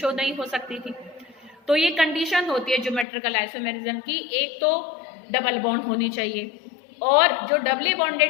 नहीं हो सकती थी। तो ये कंडीशन होती है ज्योमेट्रिकल आइसोमेरिज्म की, एक तो डबल बॉन्ड होनी चाहिए और जो डबली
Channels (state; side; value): drops out; right; at 3.1 s